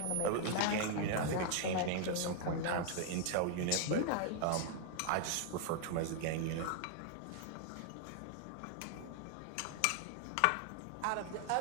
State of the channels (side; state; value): both; different; correlation 0.00